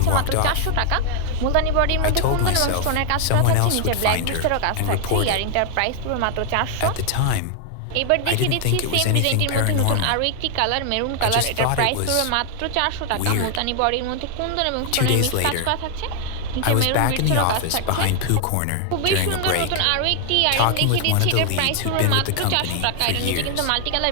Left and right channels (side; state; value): both; different; correlation 0.00